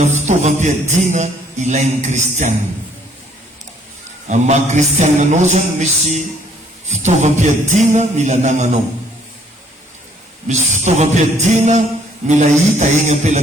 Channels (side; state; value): both; normal; correlation 0.63